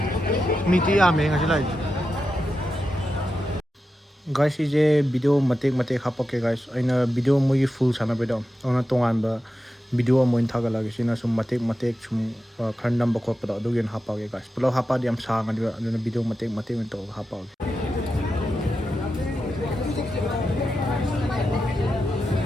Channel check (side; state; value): both; normal; correlation 0.90